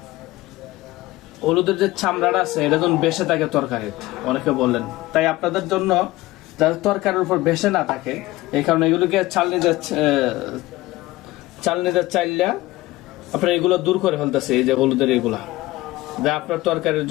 হলুদের যে চামড়াটা আছে এটা যখন বেসে থাকে তরকারি, অনেকে বললেন। তাই আপনাদের জন্য যাতে তরকারির উপর বেসে না থাকে এই কারণে এগুলোকে চালনিতে চাইলে আপনার এগুলো দূর করে ফেলতেছে। এই যে হলুদের এগুলা যা আপনার তরকারির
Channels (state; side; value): quieter; right; 18.4 dB